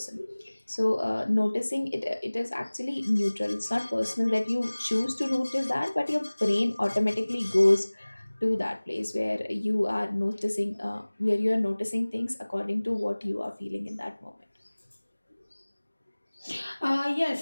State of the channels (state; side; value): inverted; both; correlation -1.00